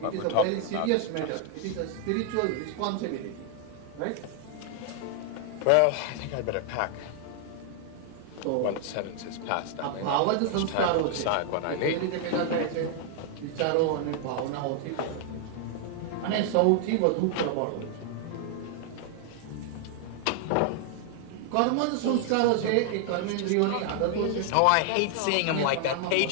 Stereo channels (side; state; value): both; different; correlation 0.00